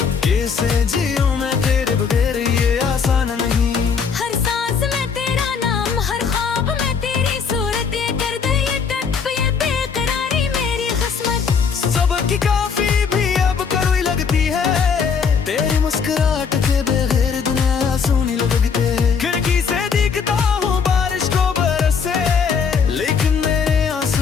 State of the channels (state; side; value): quieter; right; 6.1 dB